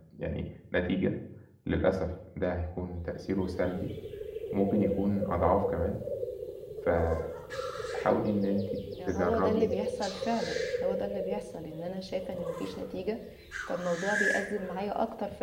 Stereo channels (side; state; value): both; identical; correlation 1.00